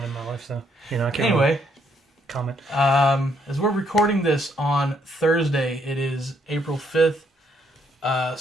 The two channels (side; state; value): both; normal; correlation 0.71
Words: in my life, so I can't anyway comment. As we're recording this on Thursday, it is April 5th.